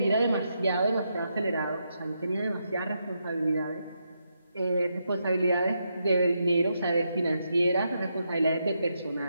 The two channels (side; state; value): both; inverted; correlation -0.82